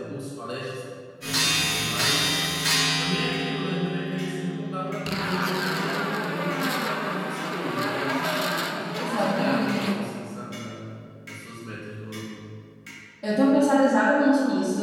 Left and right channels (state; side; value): identical; both; correlation 1.00